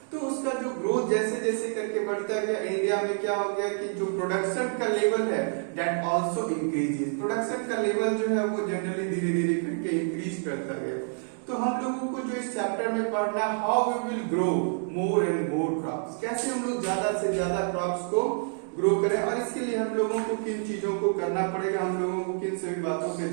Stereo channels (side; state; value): left; silent; 58 dB below the other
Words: तो उसका जो ग्रोथ जैसे जैसे करके बढ़ता गया, इंडिया में क्या हो गया कि जो प्रोडक्शन का लेवल है दैट आल्सो इंक्रीजेस. प्रोडक्शन का लेवल जो है वो जनरली धीरे धीरे करके इंक्रीज करता गया. तो हम लोगों को जो इस चैप्टर में पढ़ना है how we will grow more and more crops, कैसे हम लोग ज्यादा से ज्यादा क्रॉप्स को ग्रो करें और इसके लिए हम लोगों को किन चीजों को करना पड़ेगा, हम लोगों को किन सभी बातों पे